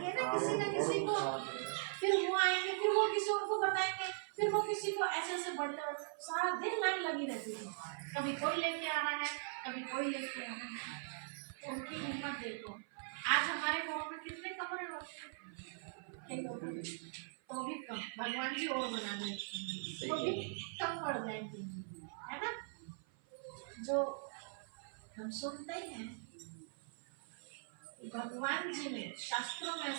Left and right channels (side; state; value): left; silent; 51 dB below the other